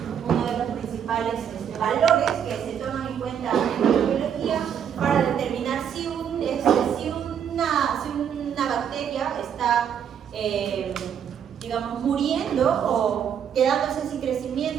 uno de los principales valores que se toman en cuenta en la biología para determinar si una bacteria está, digamos, muriendo o quedándose sin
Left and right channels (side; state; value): left; quieter; 8.5 dB